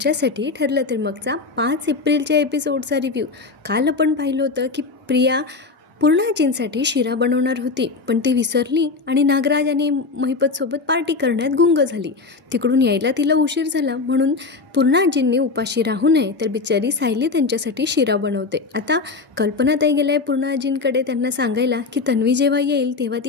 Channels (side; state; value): right; quieter; 4.1 dB